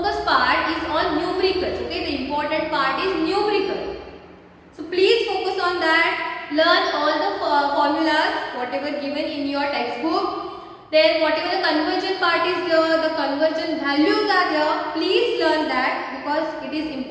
part is on numericals. Okay, the important part is numerical. So please focus on that. Learn all the formulas whatever given in your textbook. Then whatever the conversion part is there, the conversion values are there. Please learn that because it is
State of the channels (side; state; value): both; identical; correlation 1.00